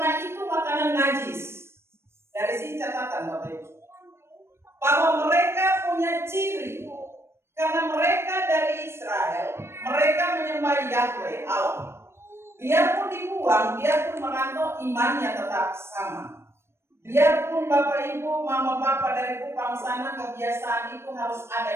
itu makanan najis. Dari sini catatan Bapak Ibu, bahwa mereka punya ciri. Karena mereka dari Israel, mereka menyembah Yahweh Allah. Biarpun dibuang, biarpun merantau, imannya tetap sama. Biarpun Bapak Ibu, Mama Bapak dari Kupang sana, kebiasaan itu harus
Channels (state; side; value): late; left; 0.12 ms